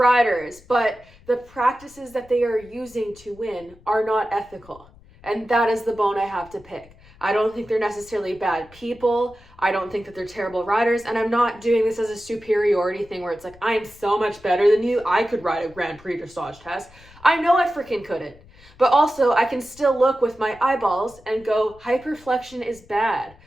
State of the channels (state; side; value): noise; left; rumble, 25 dB below the sound